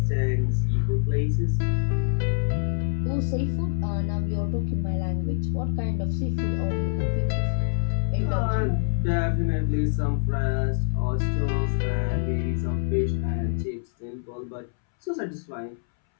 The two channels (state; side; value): silent; right; 61 dB below the other